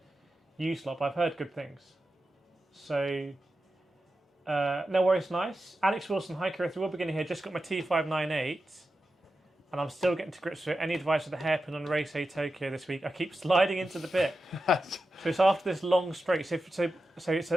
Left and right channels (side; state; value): both; normal; correlation 0.91